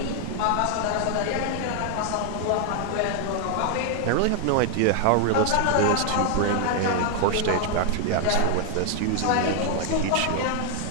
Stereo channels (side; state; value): both; different; correlation 0.00